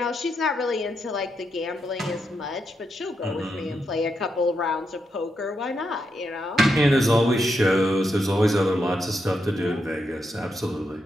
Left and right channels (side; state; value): both; normal; correlation 0.83